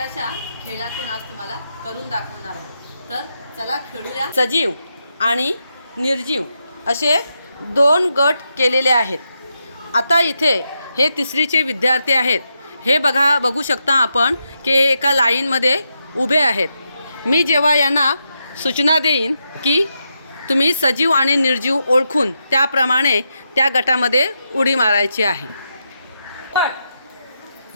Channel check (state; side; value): inverted; both; correlation -0.85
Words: खेळातून आज तुम्हाला करून दाखवणार आहोत। तर चला खेळूया। सजीव आणि निर्जीव असे दोन गट केलेले आहेत। आता इथे हे तिसरीचे विद्यार्थी आहेत। हे बघू शकता आपण की एका लाईनमध्ये उभे आहेत। मी जेव्हा यांना सूचना देईन की तुम्ही सजीव आणि निर्जीव ओळखून त्याप्रमाणे त्या गटामध्ये उडी मारायची आहे।